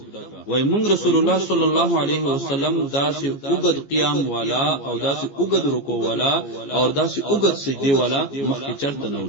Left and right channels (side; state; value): right; late; 15 ms